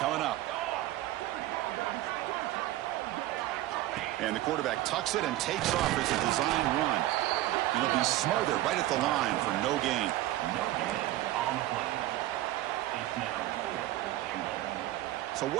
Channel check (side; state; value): left; quieter; 15.5 dB